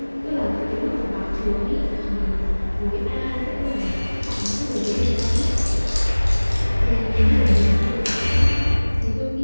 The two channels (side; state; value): both; inverted; correlation -1.00